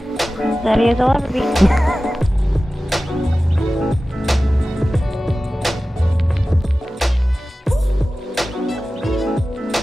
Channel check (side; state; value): both; normal; correlation 0.95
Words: Ready as I'll ever be.